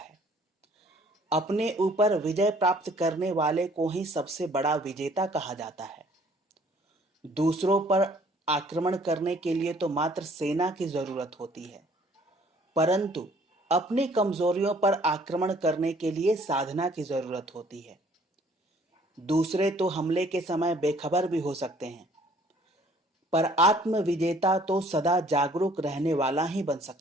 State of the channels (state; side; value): normal; both; correlation 0.58